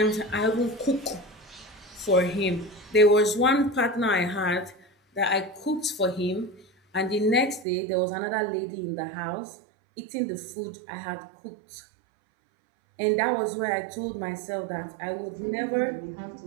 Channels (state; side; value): drops out; left; at 7.7 s